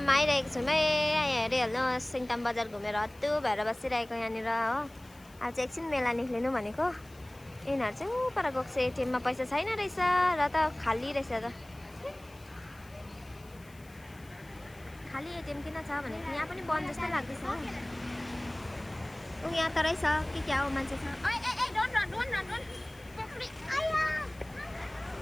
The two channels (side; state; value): left; noise; hiss, 26 dB below the sound